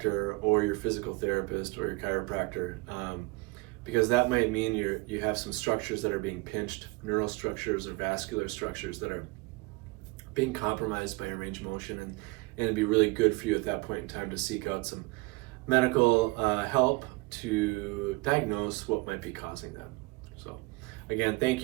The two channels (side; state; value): left; quieter; 25.3 dB